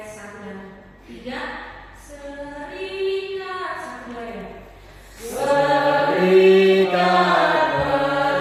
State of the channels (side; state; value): both; identical; correlation 1.00